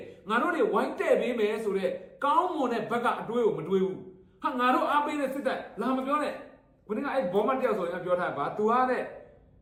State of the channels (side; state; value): both; identical; correlation 1.00